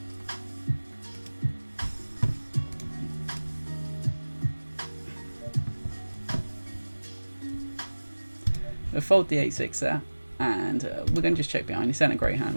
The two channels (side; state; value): both; inverted; correlation -1.00